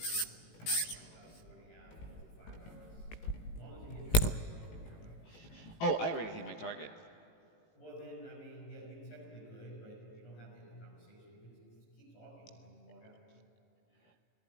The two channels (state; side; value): late; right; 18 ms